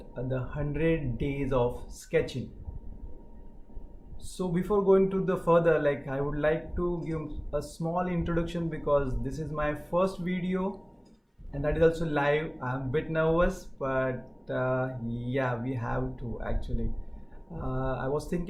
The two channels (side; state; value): both; identical; correlation 1.00